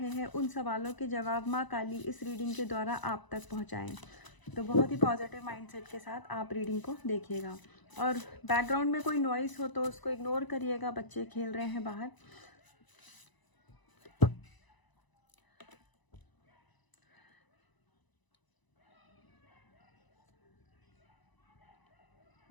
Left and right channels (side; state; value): right; late; 1.0 ms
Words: हैं, उन सवालों के जवाब माँ काली इस रीडिंग के द्वारा आप तक पहुँचाएँ। तो बहुत ही पॉजिटिव माइंडसेट के साथ आप रीडिंग को देखिएगा। और बैकग्राउंड में कोई नॉइस हो तो उसको इग्नोर करिएगा, बच्चे खेल रहे हैं बाहर।